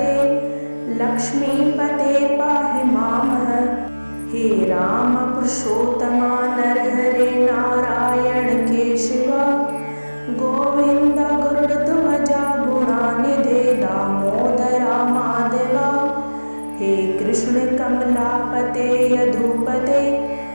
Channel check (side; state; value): both; inverted; correlation -1.00